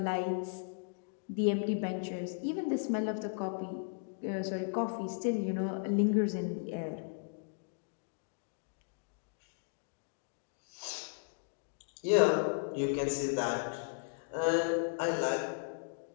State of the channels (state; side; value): silent; right; digital silence